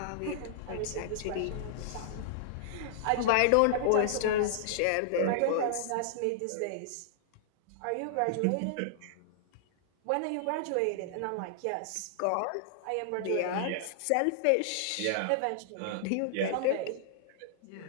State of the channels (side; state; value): both; different; correlation -0.01